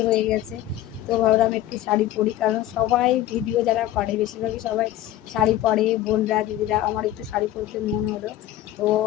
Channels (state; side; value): quieter; right; 13.5 dB